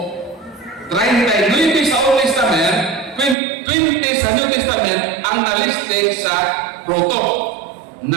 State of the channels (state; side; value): drops out; left; at 3.4 s